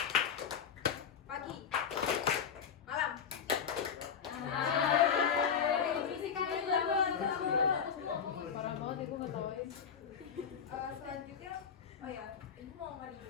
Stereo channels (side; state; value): right; quieter; 7.2 dB